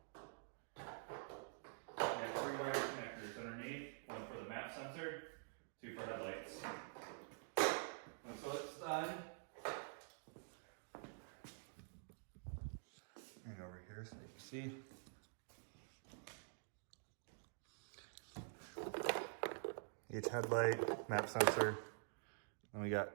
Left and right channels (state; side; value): silent; left; digital silence